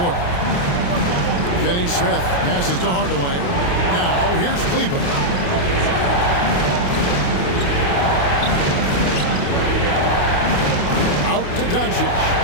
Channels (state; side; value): late; right; 28 ms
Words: Finney Smith passes to Hardaway. Now here's Kleber. Out to Doncic.